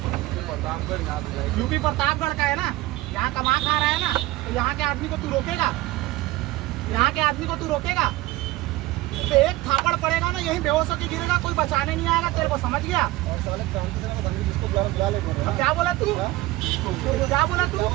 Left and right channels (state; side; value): quieter; left; 18.2 dB